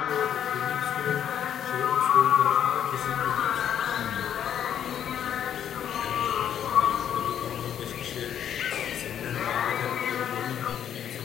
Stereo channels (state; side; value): quieter; right; 9.5 dB